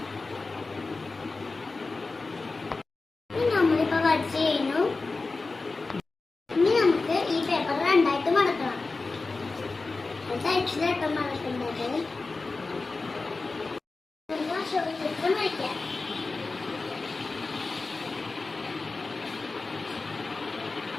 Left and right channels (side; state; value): right; quieter; 3.7 dB